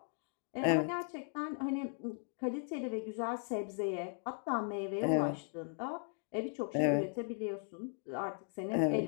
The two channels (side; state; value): right; silent; 53 dB below the other